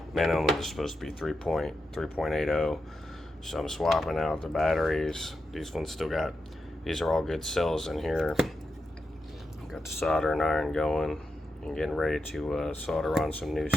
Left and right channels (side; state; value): both; normal; correlation 0.88